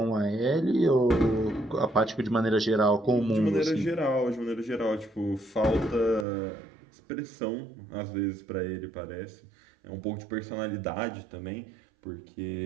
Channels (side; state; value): left; drops out; at 6.2 s